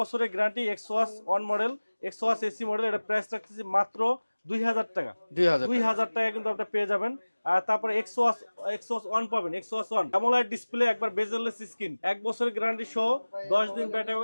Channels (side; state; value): both; inverted; correlation -1.00